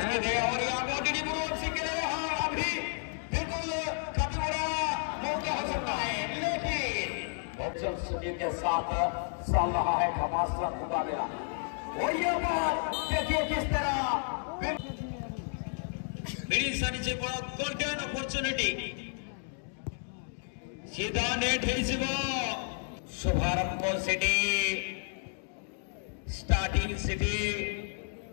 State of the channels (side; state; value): right; silent; 57 dB below the other